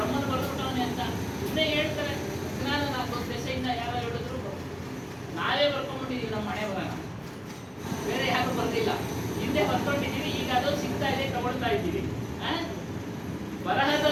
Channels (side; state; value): both; identical; correlation 1.00